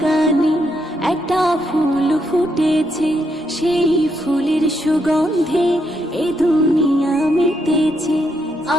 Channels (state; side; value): normal; both; correlation 0.78